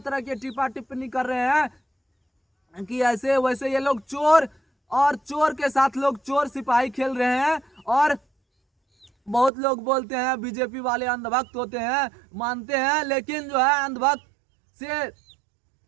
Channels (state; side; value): drops out; left; at 9.5 s